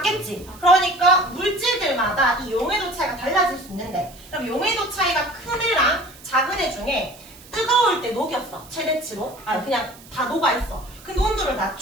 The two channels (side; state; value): right; noise; hiss, 21 dB below the sound